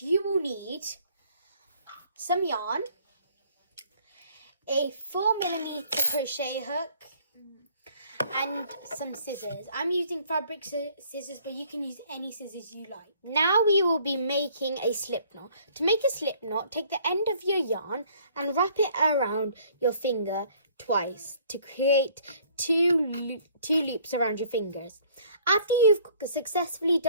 you will need some yarn, a 4mm crochet hook and some scissors. I'm using fabric scissors, but you can use any scissors you like. Now we will be making a slip knot. To make a slip knot, take the end of your yarn and wrap it around your finger twice to create two loops around your fingers. After you've successfully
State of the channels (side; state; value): both; inverted; correlation -0.58